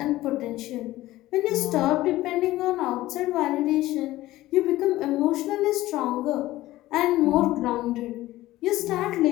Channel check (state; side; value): quieter; right; 16.4 dB